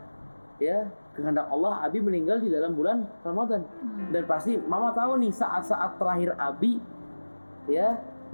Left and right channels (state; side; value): inverted; both; correlation -1.00